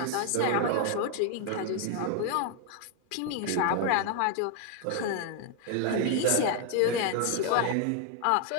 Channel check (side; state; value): both; different; correlation 0.00